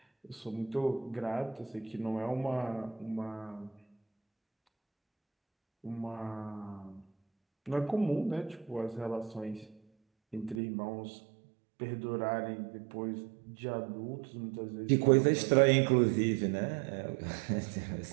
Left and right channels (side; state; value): left; drops out; at 10.6 s